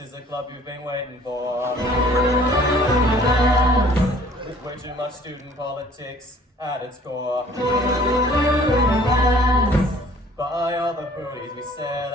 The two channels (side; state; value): both; normal; correlation 0.54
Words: a club you've been waiting for. With way too much student politics at its core. Buy all the booties we sell